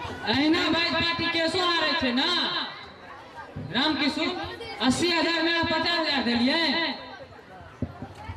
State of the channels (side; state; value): both; identical; correlation 1.00